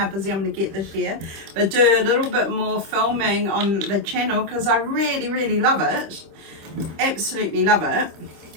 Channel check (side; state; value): left; late; 26 ms